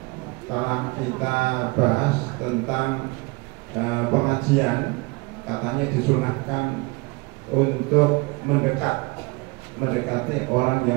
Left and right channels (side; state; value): left; quieter; 25.9 dB